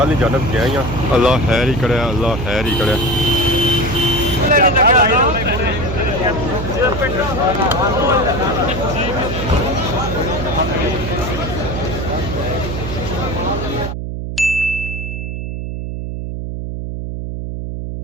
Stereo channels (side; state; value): right; noise; hum, 5 dB below the sound